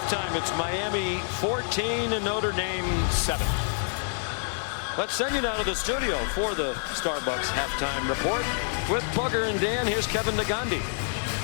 it's Miami 14 and Notre Dame 7. Let's send you now to the studio for the Starbucks halftime report with Bugger and Dan. Here's Kevin Nagandi.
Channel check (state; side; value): silent; right; 60 dB below the other